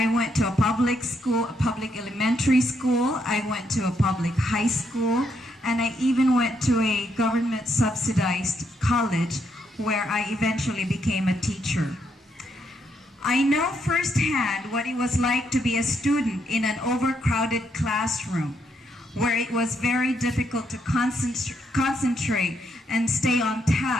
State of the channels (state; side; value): normal; both; correlation 0.76